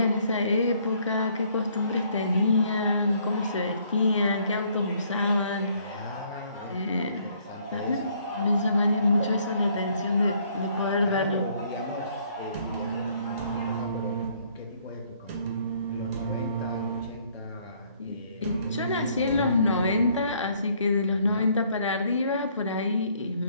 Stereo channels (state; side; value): inverted; both; correlation -0.64